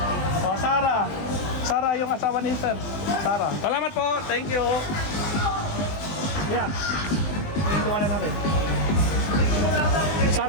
Oh, Sara. Sara yung asawa ni Sir. Sara. Salamat po, thank you. Ayan. Ito wala natin.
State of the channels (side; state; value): right; late; 20 ms